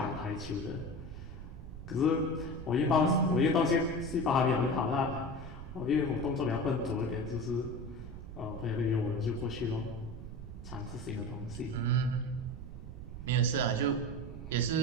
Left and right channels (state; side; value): noise; right; rumble, 11 dB below the sound